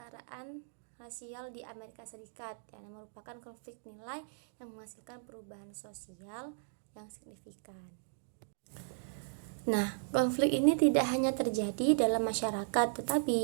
rasial di Amerika Serikat yang merupakan konflik nilai yang menghasilkan perubahan sosial yang signifikan. Nah, konflik ini tidak hanya terjadi dalam masyarakat,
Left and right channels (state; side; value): silent; left; digital silence